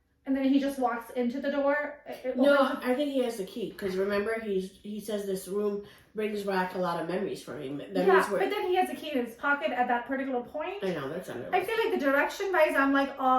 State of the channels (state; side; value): identical; both; correlation 1.00